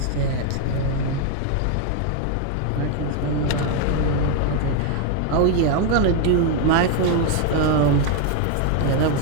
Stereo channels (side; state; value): both; different; correlation 0.01